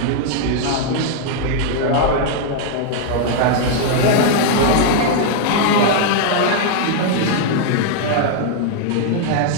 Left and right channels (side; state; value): both; different; correlation -0.01